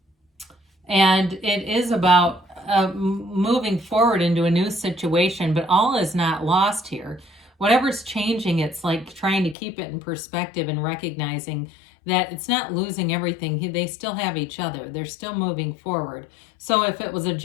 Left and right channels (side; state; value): right; drops out; at 9.6 s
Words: And it is about moving forward into a new situation, but all is not lost here. Whatever's changing, it's like trying to keep it in perspective and recognizing that it's not losing everything. They still have each other. They're still moving forward. So if it was a